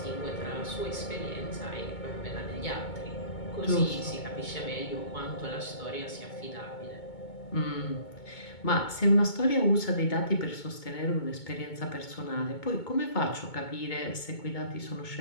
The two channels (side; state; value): right; late; 2.2 ms